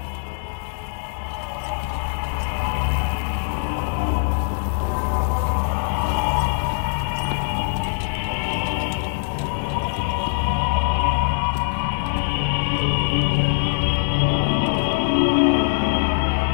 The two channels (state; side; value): silent; right; 64 dB below the other